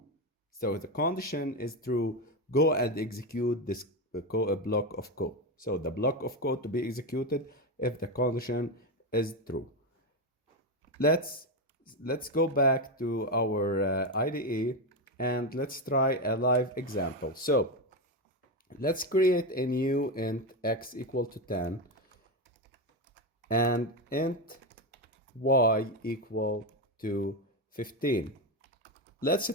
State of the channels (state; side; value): normal; both; correlation 0.12